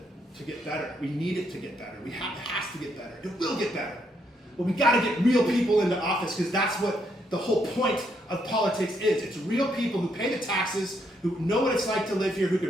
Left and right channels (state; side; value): normal; both; correlation 0.75